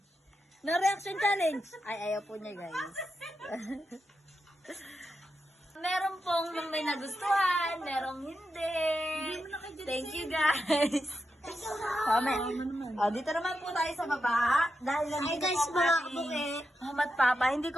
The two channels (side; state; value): both; normal; correlation 0.87